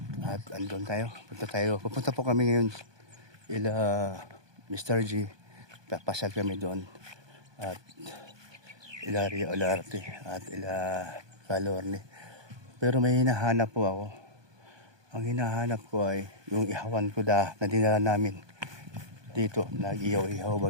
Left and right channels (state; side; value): late; left; 1.2 ms